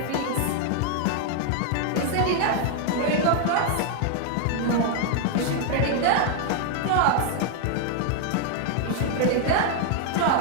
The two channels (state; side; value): different; both; correlation 0.00